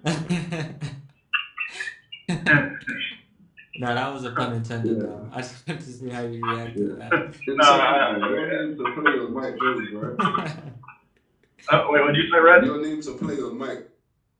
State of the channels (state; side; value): identical; both; correlation 1.00